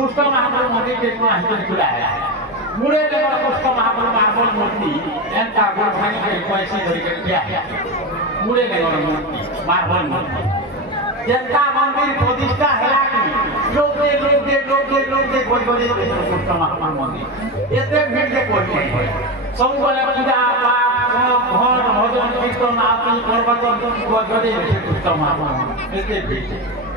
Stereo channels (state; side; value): normal; both; correlation 0.17